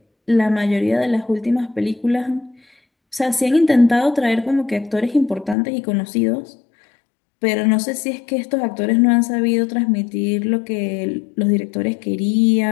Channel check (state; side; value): drops out; right; at 5.6 s